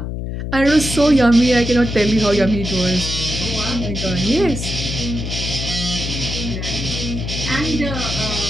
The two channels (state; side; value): noise; left; hum, 5 dB below the sound